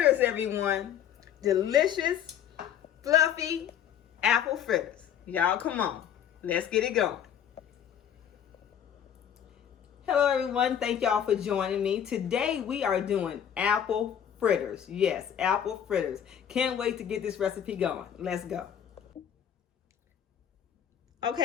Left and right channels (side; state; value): right; quieter; 9.2 dB